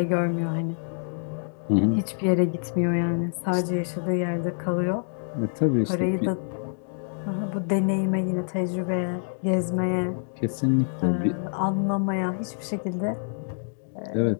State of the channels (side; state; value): right; silent; digital silence